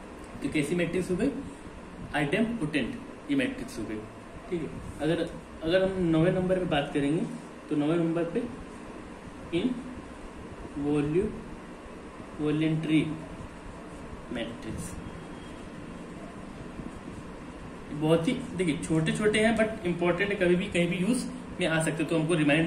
तो कैसी मैट्रिक्स हो गई? आइडेम्पोटेंट ये मैट्रिक्स हो गई। ठीक है, अगर हम 9वें नंबर पे बात करेंगे तो 9वें नंबर पे इन वॉल्यूंट्री मैट्रिक्स। बहुत ही देखिए छोटे छोटे हैं बट इंपॉर्टेंट है, कभी भी कहीं भी यूज में आ सकते, तो हमको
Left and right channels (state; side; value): identical; both; correlation 1.00